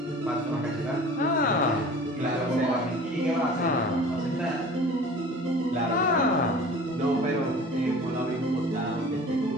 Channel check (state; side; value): normal; both; correlation 0.43